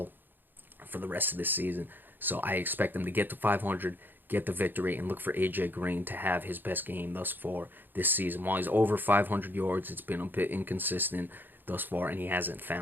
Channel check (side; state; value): left; late; 0.093 ms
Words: for the rest of this season. So I expect them to get to 500, get the victory, and look for A.J. Green to have his best game thus far this season. While he's over 500 yards, it's been a bit inconsistent thus far, and he hasn't